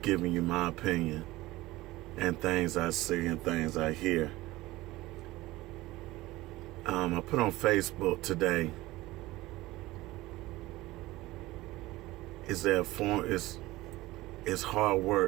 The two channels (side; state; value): left; quieter; 18.4 dB